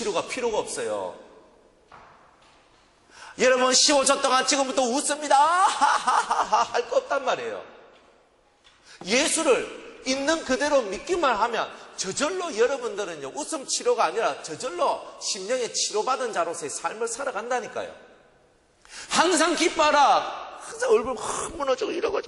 필요가 없어요. 여러분 15초 동안 지금부터 웃습니다. 하하하하 할 거 없단 말이에요. 예수를 있는 그대로 믿기만 하면 저절로 여러분들은요, 웃음 치료가 아니라 저절로 심령에 치료받은 자로서의 삶을 살아간다니까요. 항상 기뻐하라. 항상 얼굴 확 무너지고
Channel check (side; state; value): both; identical; correlation 1.00